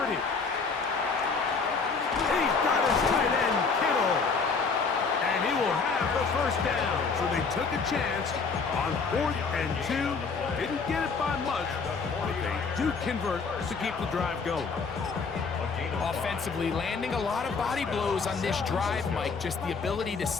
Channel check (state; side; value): quieter; right; 4.9 dB